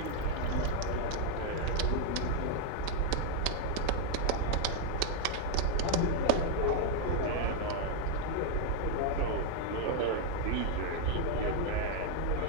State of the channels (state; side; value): different; both; correlation 0.00